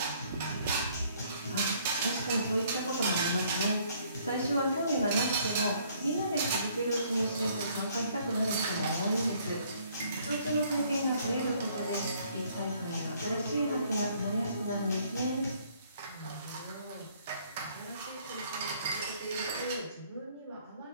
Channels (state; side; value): inverted; both; correlation -0.63